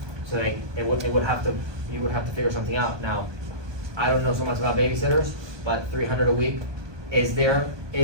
So like, you would have to figure something out. Now, I don't know so much about babysitters, but 300 a week, is there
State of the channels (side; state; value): left; late; 1.2 ms